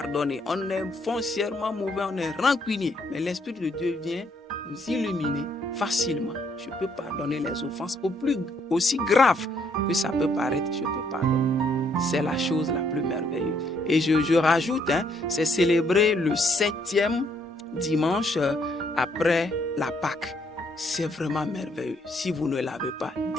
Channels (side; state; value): both; normal; correlation 0.69